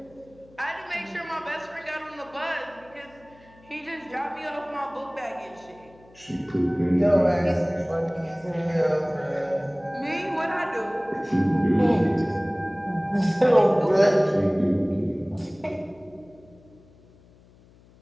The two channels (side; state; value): left; noise; hum, 27 dB below the sound